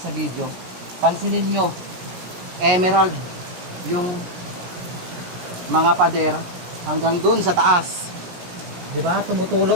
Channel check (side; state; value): left; late; 17 ms